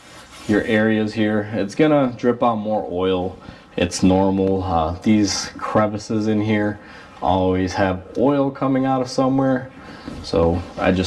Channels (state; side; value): identical; both; correlation 1.00